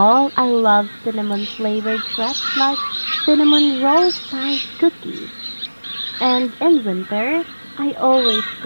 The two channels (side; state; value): both; inverted; correlation -1.00